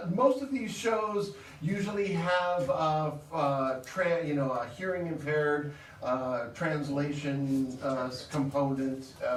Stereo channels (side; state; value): both; identical; correlation 1.00